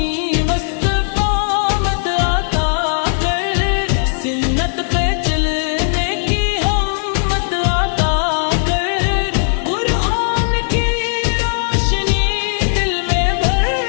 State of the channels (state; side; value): silent; right; digital silence